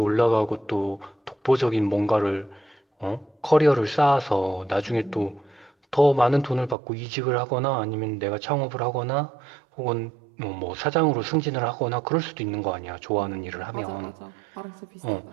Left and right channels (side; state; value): left; drops out; at 6.8 s